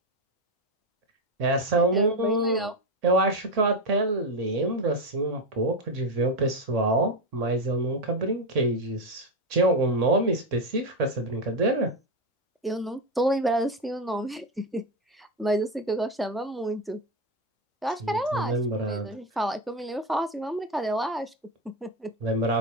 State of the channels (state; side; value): normal; both; correlation 0.12